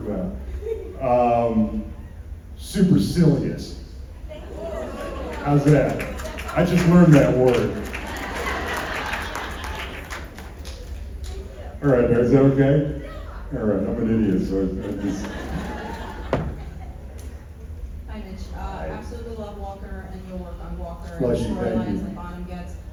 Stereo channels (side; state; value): both; identical; correlation 1.00